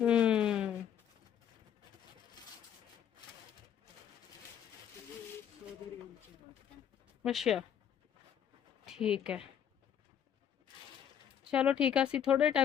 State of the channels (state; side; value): quieter; right; 9.1 dB